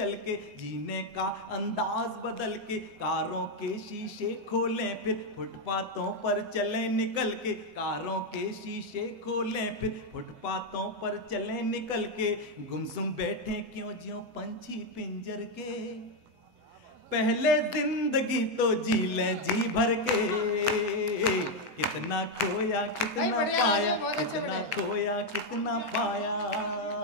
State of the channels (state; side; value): late; left; 8.0 ms